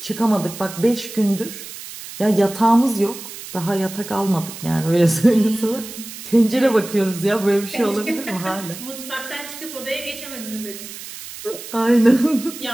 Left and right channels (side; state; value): right; noise; hiss, 12 dB below the sound